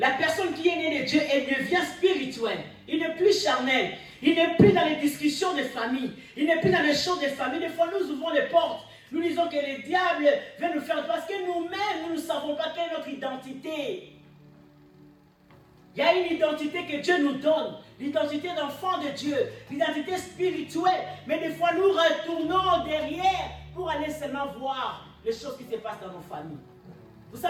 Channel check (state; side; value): identical; both; correlation 1.00